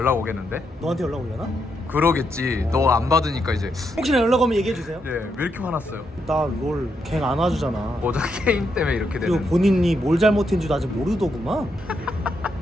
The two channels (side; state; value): both; normal; correlation 0.80